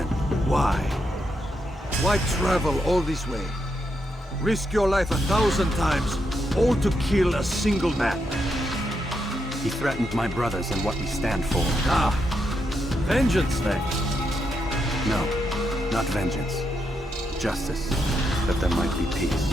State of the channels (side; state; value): both; normal; correlation 0.82